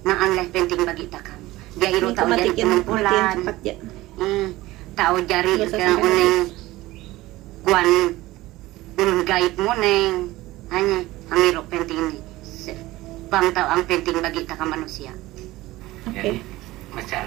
Naan leh penting bagi takam. Dia iro tahu jadi kumpulan. Ya. Tahu jari ke uneng kuan ulun gaib muneng. Hanya iro penting ni. Bang tahu ang penting bagi takam manusia. Oke.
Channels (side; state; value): left; quieter; 18.2 dB